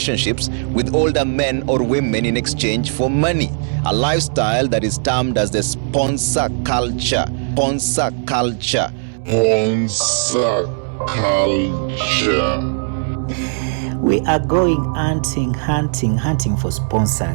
with older men or women in exchange for money, a lifestyle that is termed as the sponsor culture. Sponsor culture. Sponsor culture. We are going hunting for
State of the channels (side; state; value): left; silent; digital silence